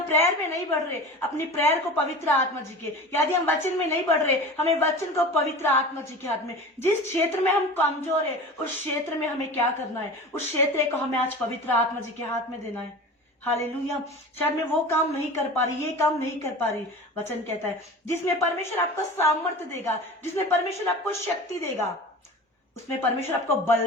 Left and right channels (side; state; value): both; normal; correlation 0.35